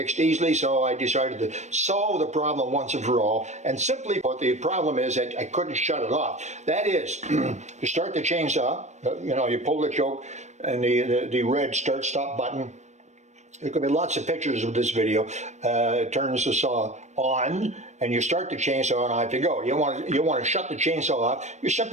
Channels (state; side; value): late; left; 0.34 ms